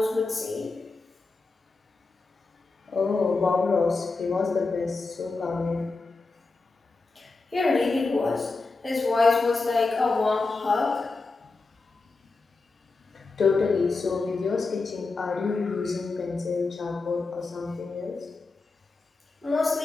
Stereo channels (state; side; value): quieter; right; 3.8 dB